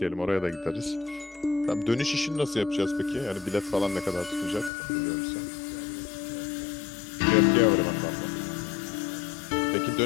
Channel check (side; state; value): right; drops out; at 4.7 s